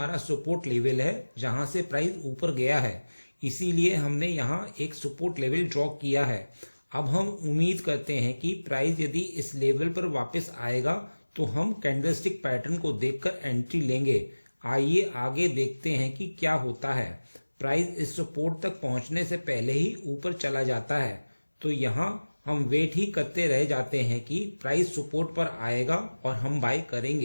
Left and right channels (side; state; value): both; inverted; correlation -1.00